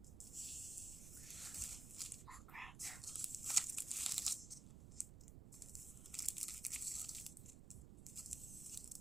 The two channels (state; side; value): noise; right; rumble, 10 dB below the sound